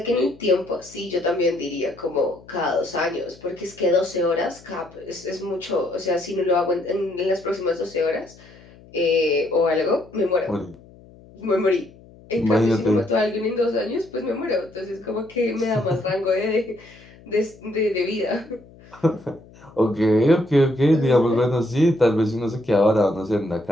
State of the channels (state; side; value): noise; left; hum, 23 dB below the sound